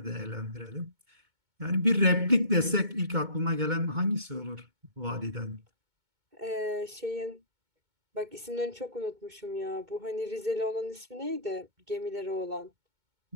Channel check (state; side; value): late; left; 2.2 ms